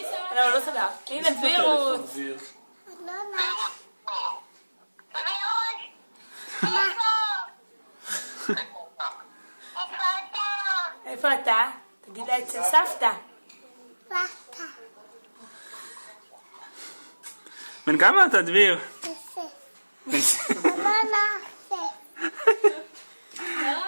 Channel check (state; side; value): inverted; both; correlation -1.00